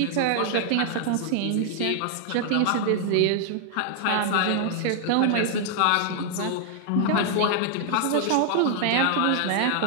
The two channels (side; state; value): both; different; correlation 0.00